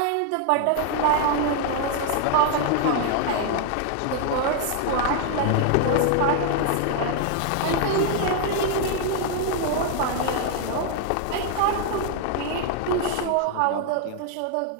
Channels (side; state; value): both; different; correlation 0.00